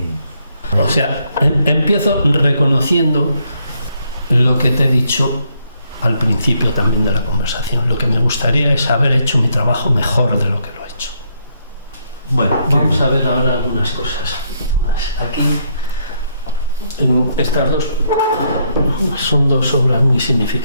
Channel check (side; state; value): both; inverted; correlation -0.74